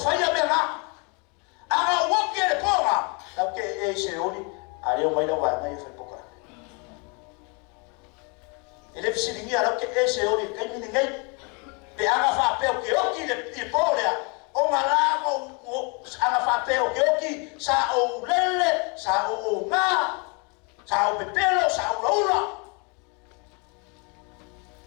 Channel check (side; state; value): right; quieter; 33.0 dB